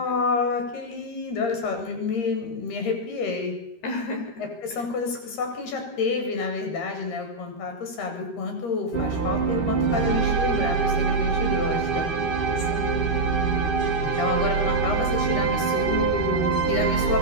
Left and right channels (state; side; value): late; right; 13 ms